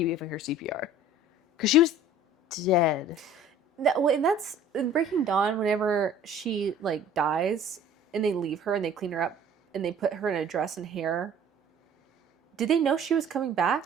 giving her CPR. Because she was dead. And that's in Breaking Dawn, whenever she like dies and they leave her and they clean her up and they put her in a dress and hair. Did they know she was coming back?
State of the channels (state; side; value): normal; both; correlation 0.48